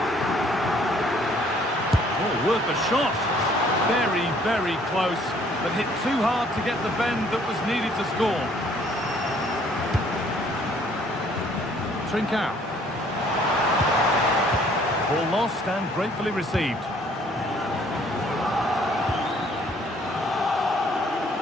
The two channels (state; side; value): normal; both; correlation 0.60